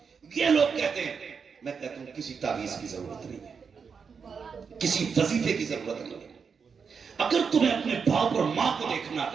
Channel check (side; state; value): left; quieter; 5.9 dB